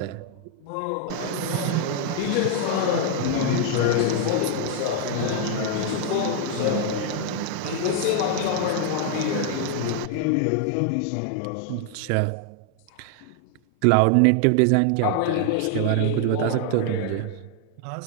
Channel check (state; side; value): different; both; correlation 0.00